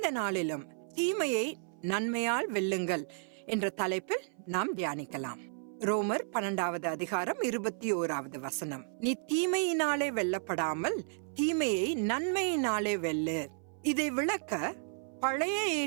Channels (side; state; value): left; silent; 56 dB below the other